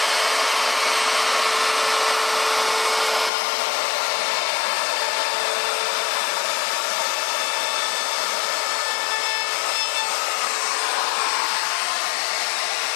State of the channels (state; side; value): drops out; right; at 3.3 s